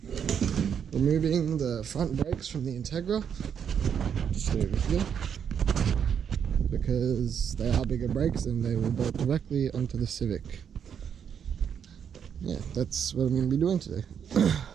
removing the front brakes from the Integra, just over here, because they are bigger brakes and they will bolt directly onto the Civic. Yeah, that's what I'm going to be doing today.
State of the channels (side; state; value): left; quieter; 7.9 dB